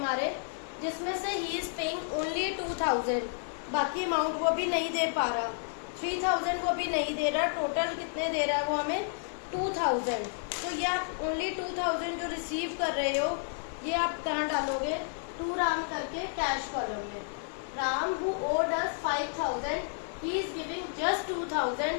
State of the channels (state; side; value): silent; right; digital silence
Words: जिसमें से ही इज पेइंग ओनली 2000, बाकी अमाउंट वो भी नहीं दे पा रहा, 3000 वो भी नहीं दे रहा, टोटल कितने दे रहा है वो हमें 2000। तो ये आप ओनली 2000 जो रिसीव कर रहे हो ये आप कहाँ डालोगे, टू राम करके कैश कॉलम में। Ram who owed us 5000, he is giving just